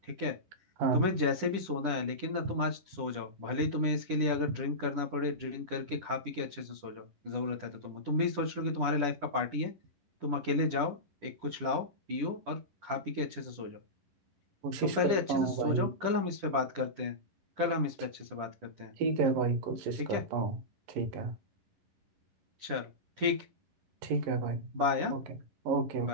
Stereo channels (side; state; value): left; late; 10 ms